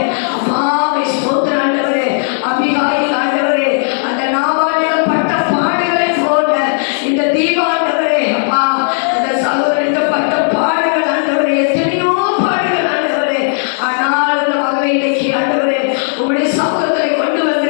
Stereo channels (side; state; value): right; silent; digital silence